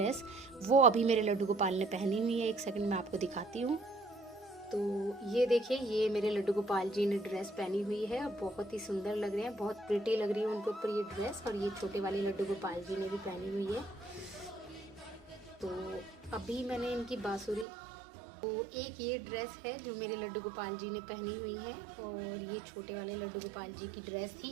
वो अभी मेरे लड्डू गोपाल ने पहनी हुई है। एक सेकंड में आपको दिखाती हूँ। तो ये देखिए, ये मेरे लड्डू गोपाल जी ने ड्रेस पहनी हुई है, बहुत ही सुंदर लग रहे हैं, बहुत प्रिटी लग रही है उनके ऊपर ये ड्रेस। और ये छोटे वाले लड्डू गोपाल जी ने भी पहनी हुई है। तो अभी मैंने इनकी बांसुरी, तो एक ये ड्रेस है जो मेरे लड्डू गोपाल जी ने पहनी हुई है, और ये छोटे वाले लड्डू गोपाल जी की ड्रेस थी।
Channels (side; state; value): left; drops out; at 17.7 s